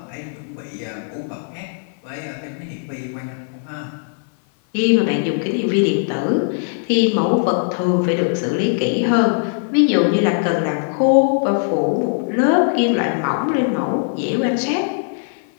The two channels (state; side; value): silent; right; 59 dB below the other